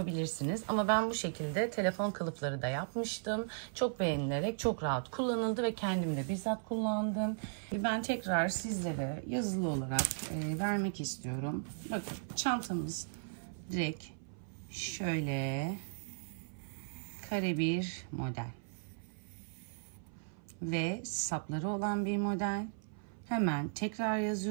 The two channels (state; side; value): silent; left; 53 dB below the other